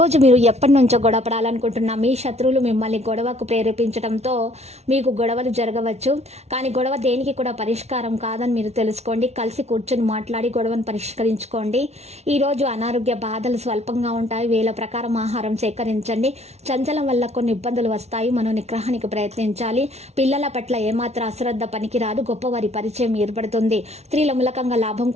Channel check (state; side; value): late; left; 0.31 ms